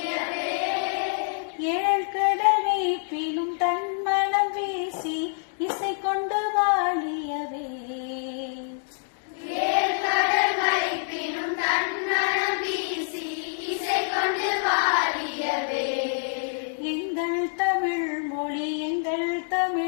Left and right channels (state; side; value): silent; right; digital silence